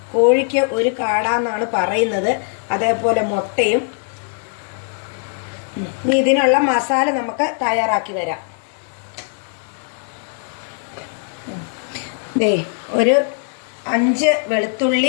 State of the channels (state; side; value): silent; right; 58 dB below the other